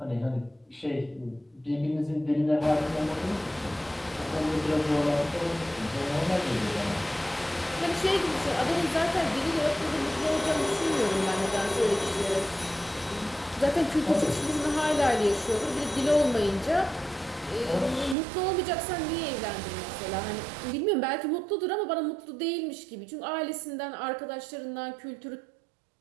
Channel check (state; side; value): drops out; left; at 18.2 s